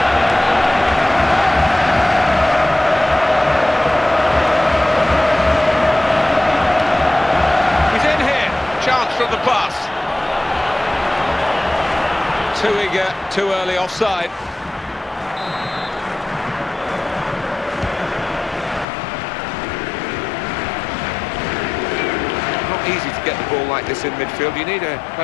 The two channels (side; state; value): right; drops out; at 18.9 s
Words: He's in here, chance from the pass. Too eager, too early offside. Not easy to get the ball like this in midfield. You need a